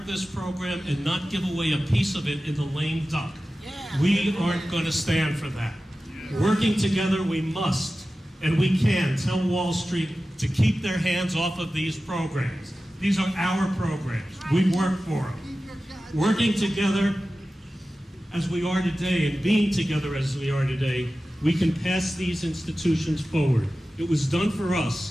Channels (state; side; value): normal; both; correlation 0.95